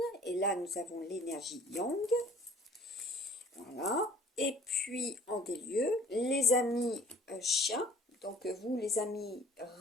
et là nous avons l'énergie yang, voilà, et puis en des lieux, les amis chiens. Donc vous, les amis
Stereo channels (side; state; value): both; normal; correlation 0.51